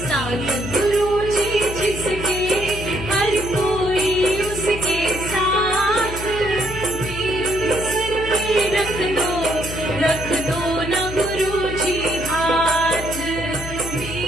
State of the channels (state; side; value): noise; left; hum, 9 dB below the sound